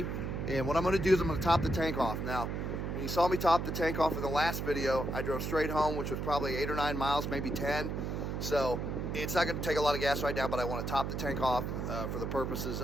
and what I'm gonna do is I'm gonna top the tank off. Now, when you saw me top the tank off in the last video, I drove straight home, which was probably 8 or 9 miles, maybe 10. So it's not gonna take a lot of gas right now, but I wanna top the tank off for the purposes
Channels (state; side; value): noise; right; hum, 3 dB below the sound